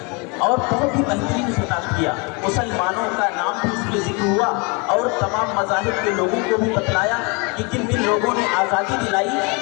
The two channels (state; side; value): quieter; right; 30.9 dB